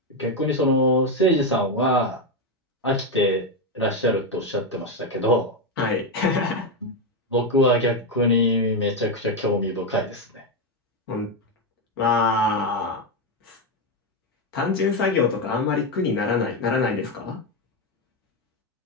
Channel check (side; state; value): both; normal; correlation 0.07